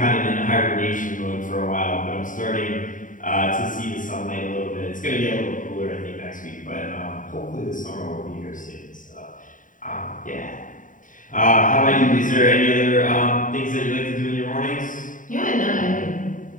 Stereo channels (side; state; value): right; late; 0.38 ms